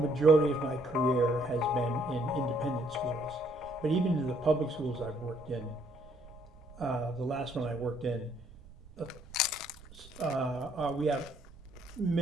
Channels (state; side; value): noise; right; rumble, 21 dB below the sound